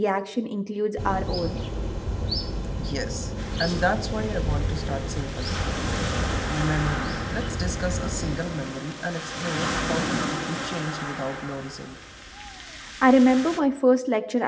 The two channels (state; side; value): identical; both; correlation 1.00